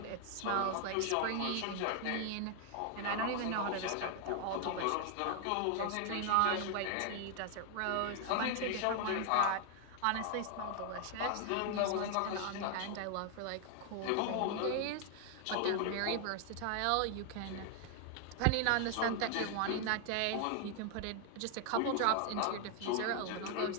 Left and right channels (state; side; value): different; both; correlation 0.00